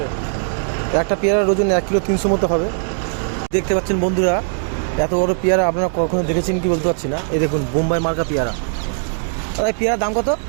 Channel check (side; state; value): left; silent; digital silence